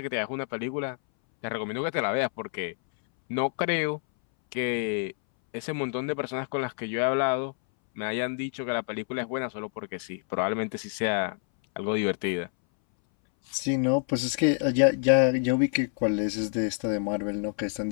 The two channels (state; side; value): silent; right; 60 dB below the other